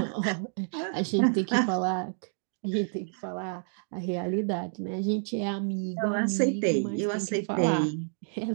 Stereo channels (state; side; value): silent; left; digital silence